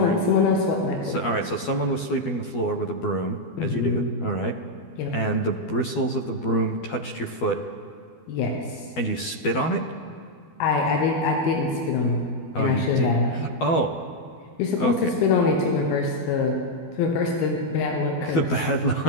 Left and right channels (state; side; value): late; right; 12 ms